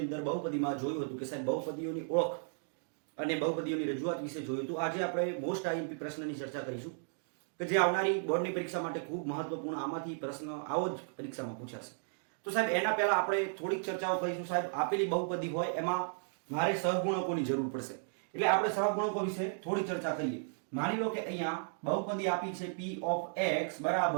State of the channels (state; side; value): silent; left; digital silence